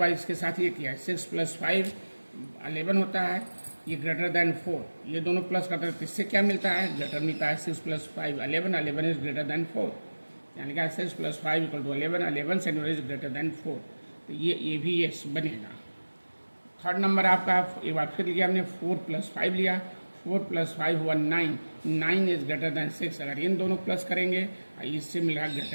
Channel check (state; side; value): inverted; both; correlation -1.00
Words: इसके साथ ये किया, 6 प्लस 5 11 होता है, ये ग्रेटर देन 4, ये दोनों प्लस करते हैं तो इससे क्या मिलता है, ग्रेटर मिलता है। 6 प्लस 5 11, 11 इज ग्रेटर देन 4, यानी कि 6 plus 5 equal to 11, 11 centimetre is greater than 4, तो ये भी ये बनेगा। थर्ड नंबर आपका एक बार फिर लिया हमने, 4 प्लस 5 लिया, 4 प्लस 5 हुआ 9, 9 इज ग्रेटर देन 6। अगर इन दोनों प्लस करेंगे इससे मिल रहा